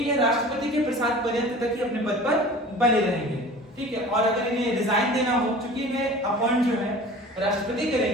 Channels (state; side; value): normal; both; correlation 0.41